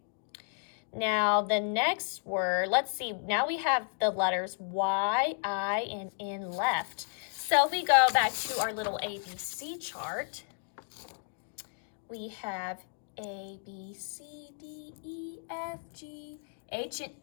Now the next word, let's see, now we have the letters Y, I, and N left. So if we go back to our little ABC chart, we have A, B, C, D, E, F, G, H, and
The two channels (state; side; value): silent; right; 56 dB below the other